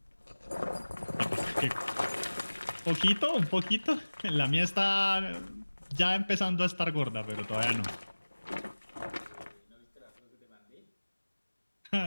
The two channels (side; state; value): both; inverted; correlation -1.00